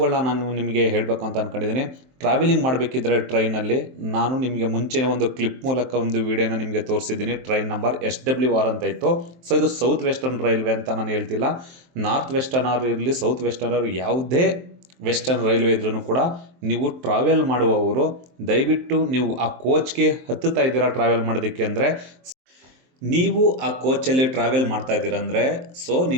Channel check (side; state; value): left; late; 23 ms